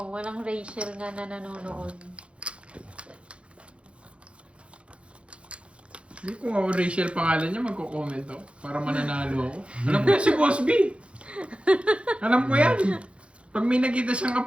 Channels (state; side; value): late; left; 0.060 ms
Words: walang Rachel nga na nanonood. Hindi kung ako Rachel pangalan niya, magko-comment ako para mananalo ako. Alam ko yan si Boss B. Alam ko yan. Pag may nakita siyang